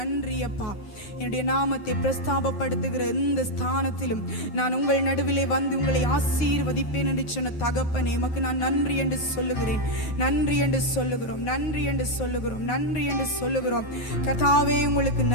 அப்பா. என்னுடைய நாமத்தை பிரஸ்தாபப்படுத்துகிற இந்த ஸ்தானத்திலும் நான் உங்கள் நடுவிலே வந்து உங்களை ஆசீர்வதிப்பேன் என்று சொன்ன தகப்பனே உமக்கு நான் நன்றி என்று சொல்லுகிறேன், நன்றி என்று சொல்லுகிறோம், நன்றி என்று சொல்லுகிறோம், நன்றி என்று சொல்லுகிறோம். கர்த்தாவே உங்களுக்கு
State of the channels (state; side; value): late; right; 9.3 ms